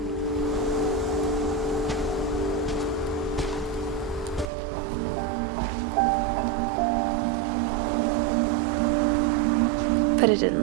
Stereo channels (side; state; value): left; drops out; at 4.5 s